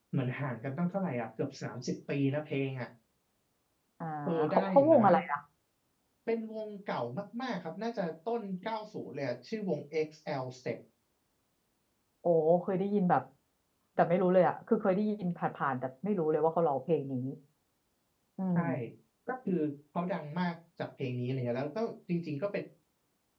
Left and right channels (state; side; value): identical; both; correlation 1.00